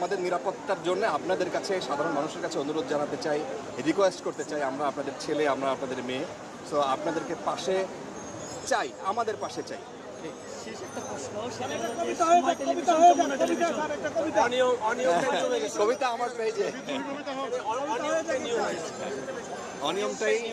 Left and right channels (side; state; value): both; identical; correlation 1.00